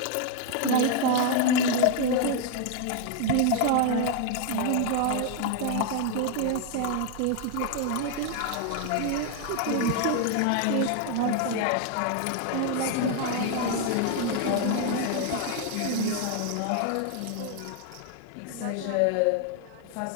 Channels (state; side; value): different; both; correlation 0.01